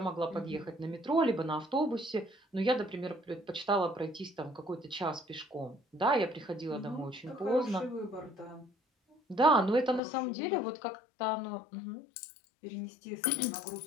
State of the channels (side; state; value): right; drops out; at 10.0 s